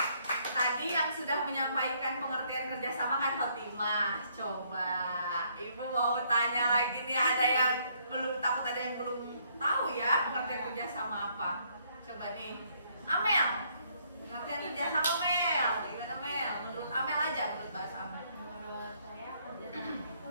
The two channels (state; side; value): inverted; both; correlation -0.68